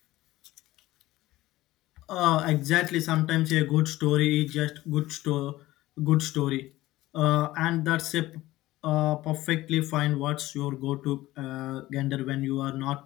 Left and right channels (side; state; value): right; quieter; 17.1 dB